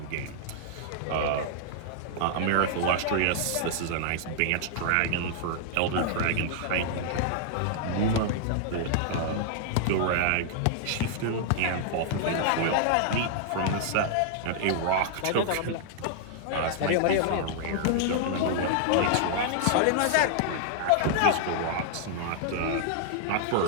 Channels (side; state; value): both; different; correlation -0.01